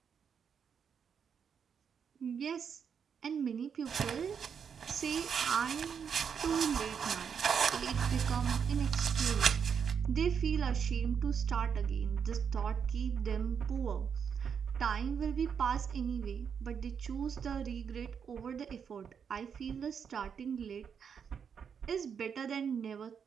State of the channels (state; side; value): quieter; left; 7.0 dB